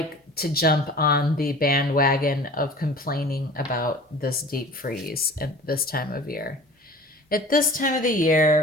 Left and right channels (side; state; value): both; normal; correlation 0.42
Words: to jump on the bandwagon of complaining about this deep freeze at this time of year. At this time of the